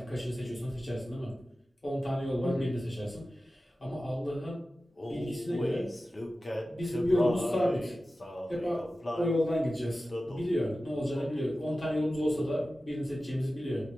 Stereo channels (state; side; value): normal; both; correlation 0.95